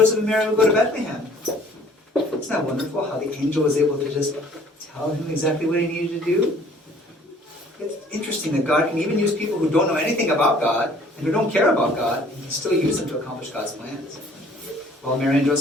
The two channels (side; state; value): both; normal; correlation 0.55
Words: and Mary would go to Bethlehem? Isn't that wonderful how the angel was able to just tell him exactly what he needed to do? It's interesting that God can even use people who don't know anything about God and who don't care about God, and He can still use them to accomplish God's plans. Well, Mary and